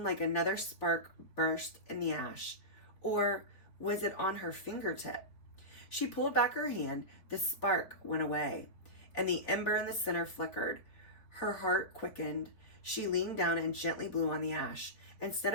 like another spark burst in the ash. Or was it on her fingertip? She pulled back her hand. The spark went away, and the ember in the center flickered. Her heart quickened. She leaned down and gently blew on the ash. Instead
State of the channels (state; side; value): late; right; 4.1 ms